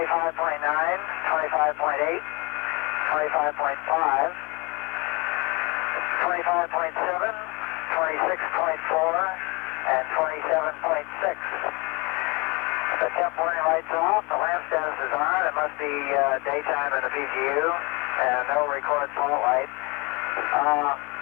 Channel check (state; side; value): quieter; right; 28.0 dB